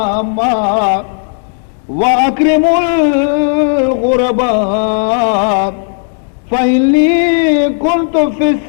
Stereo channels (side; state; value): right; silent; 57 dB below the other